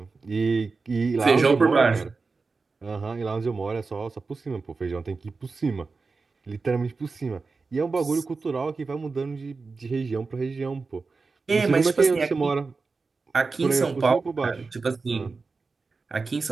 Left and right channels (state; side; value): quieter; left; 4.3 dB